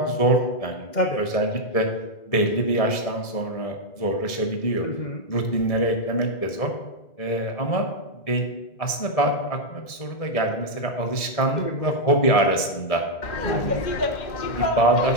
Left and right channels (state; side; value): late; right; 1.7 ms